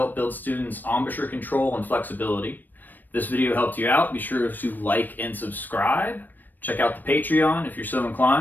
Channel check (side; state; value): right; late; 0.089 ms